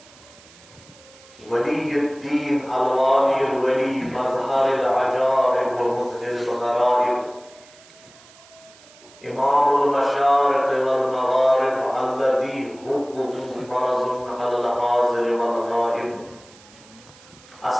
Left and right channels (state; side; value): noise; right; hiss, 24 dB below the sound